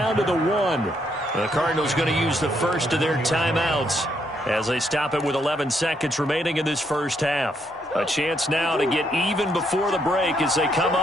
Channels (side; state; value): both; normal; correlation 0.74